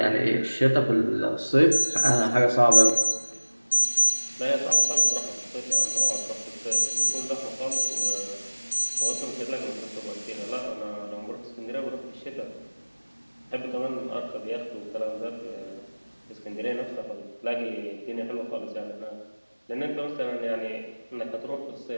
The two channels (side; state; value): both; inverted; correlation -1.00